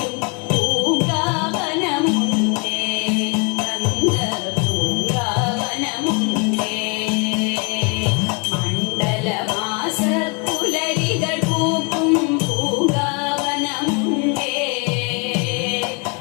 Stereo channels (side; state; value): right; quieter; 33.6 dB